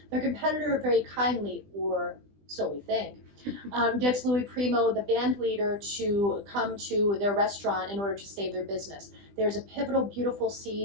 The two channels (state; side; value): late; left; 20 ms